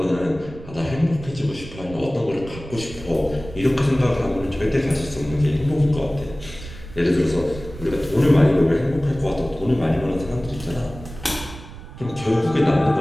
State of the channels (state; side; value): noise; right; rumble, 14 dB below the sound